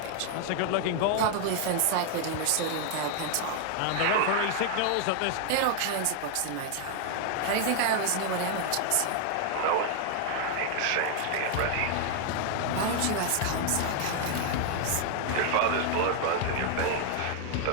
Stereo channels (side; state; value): both; different; correlation 0.00